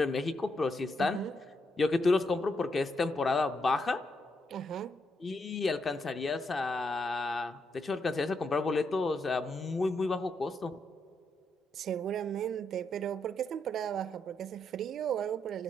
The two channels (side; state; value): both; normal; correlation 0.80